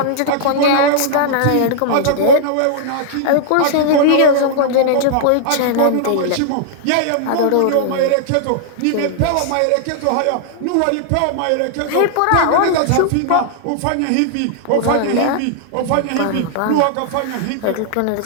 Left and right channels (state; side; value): different; both; correlation -0.01